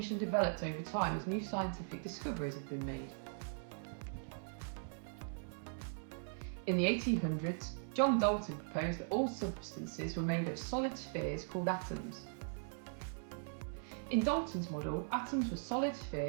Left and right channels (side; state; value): left; silent; digital silence